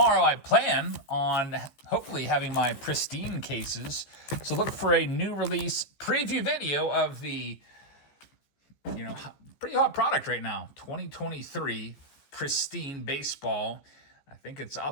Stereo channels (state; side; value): late; right; 15 ms